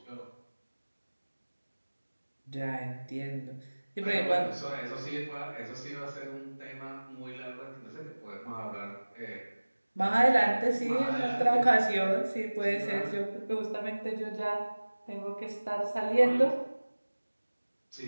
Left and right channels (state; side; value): inverted; both; correlation -1.00